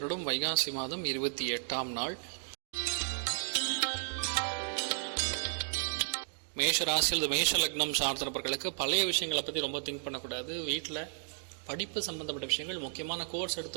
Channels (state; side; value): silent; left; digital silence